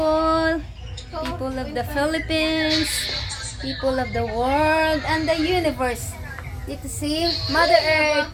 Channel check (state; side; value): identical; both; correlation 1.00